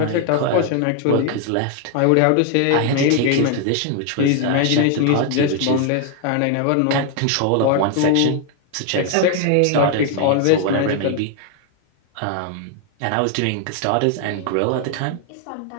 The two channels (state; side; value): different; both; correlation 0.01